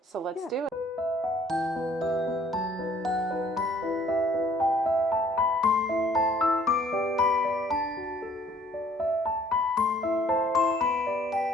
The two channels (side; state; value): both; normal; correlation 0.59